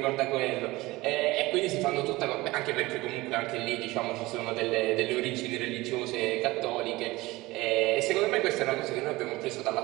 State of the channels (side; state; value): left; quieter; 20.3 dB